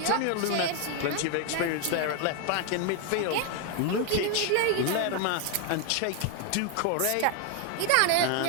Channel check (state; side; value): different; both; correlation 0.01